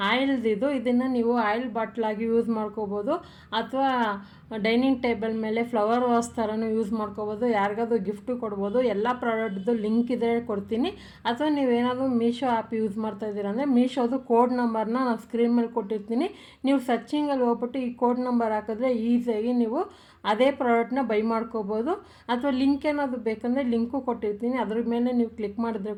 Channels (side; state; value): both; identical; correlation 1.00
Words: ಆಯಿಲ್ದಿದು. ಇದನ್ನು ನೀವು ಆಯಿಲ್ ಬಾಟ್ಲಾಗಿ ಯೂಸ್ ಮಾಡ್ಕೋಬೋದು, ಅಥವಾ ಡೈನಿಂಗ್ ಟೇಬಲ್ ಮೇಲೆ ಫ್ಲವರ್ ವಾಸ್ ಥರನೂ ಯೂಸ್ ಮಾಡ್ಕೋಬೋದು. ಯಾರಿಗಾದ್ರೂ ಗಿಫ್ಟು ಕೊಡ್ಬೋದು. ಎಲ್ಲ ಪ್ರಾಡಕ್ಟ್ದು ಲಿಂಕ್ ಇದ್ರೆ ಕೊಡ್ತೀನಿ. ಅಥವಾ ನೀವೇನಾದರೂ ಮೀಶೋ ಆ್ಯಪ್ ಯೂಸ್ ಮಾಡ್ತಾ ಇದ್ದೀರ ಅಂದರೆ ಮೀಶೋದು ಕೋಡ್ ನಂಬರ್ನ ನಾನು ಸ್ಕ್ರೀನ್ ಮೇಲೆ ಕೊಟ್ಟಿರ್ತೀನಿ. ನೀವು ಸರ್ಚಿಂಗಲ್ಲಿ ಹೋಗ್ಬಿಟ್ಟು ಈ ಕೋಡ್ ನಂಬರ್ ಹಾಕಿದ್ರೆ ಈಸಿಯಾಗಿ ನೀವು ಅದೇ ಪ್ರಾಡಕ್ಟ್ನ ಬೈ ಮಾಡ್ಕೋಬೋದು. ಅಥವಾ ಲಿಂಕ್ ಏನಾದರೂ ಬೇಕಂದರೆ ಲಿಂಕು ಕೊಟ್ಟಿರ್ತೀನಿ, ಅದ್ರ ಮೇಲೆ ನೀವು ಕ್ಲಿಕ್ ಮಾಡಿದ್ರೆ